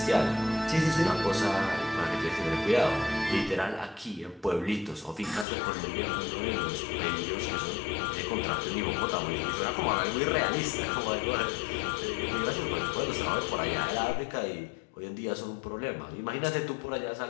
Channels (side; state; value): right; drops out; at 5.5 s